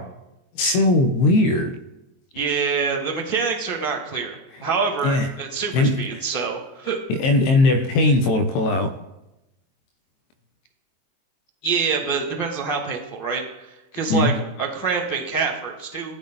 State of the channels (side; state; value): right; late; 23 ms